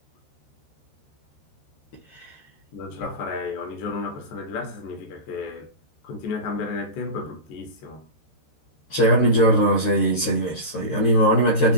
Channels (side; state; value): right; late; 13 ms